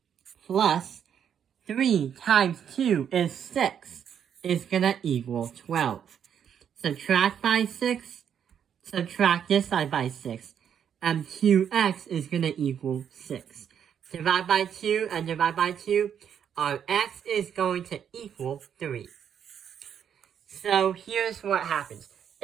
plus 3 times 2 is 6, is going to equal 12. Subtract by 6, subtract this side by 6, and 2x is going to equal 6. Divide by 2 and divide by 2, our x is going to equal 3. So here's what happens.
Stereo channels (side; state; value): left; quieter; 8.5 dB